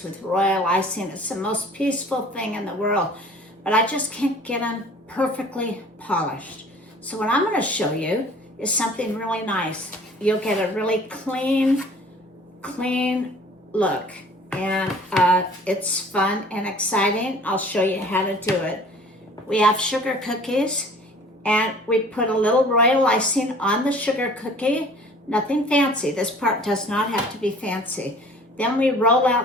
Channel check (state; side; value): normal; both; correlation 0.49